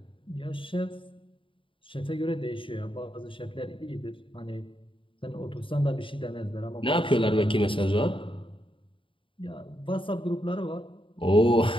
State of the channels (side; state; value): right; late; 0.25 ms